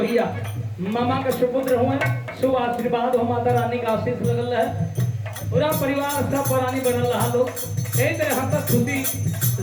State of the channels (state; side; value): identical; both; correlation 1.00